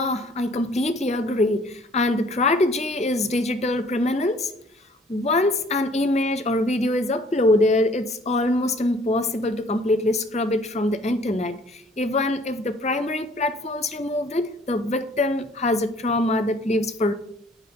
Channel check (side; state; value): both; normal; correlation 0.57